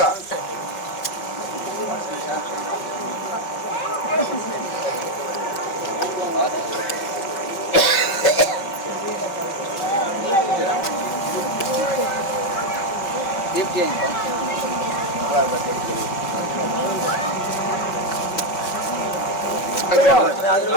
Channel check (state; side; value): late; right; 5.1 ms